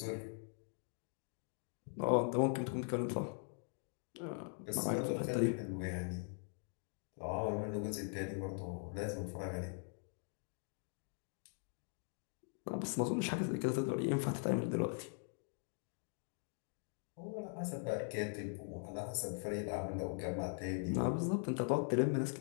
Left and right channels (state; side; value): silent; right; 50 dB below the other